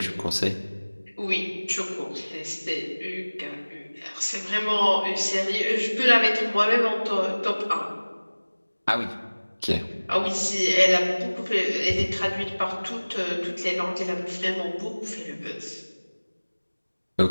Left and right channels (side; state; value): both; inverted; correlation -1.00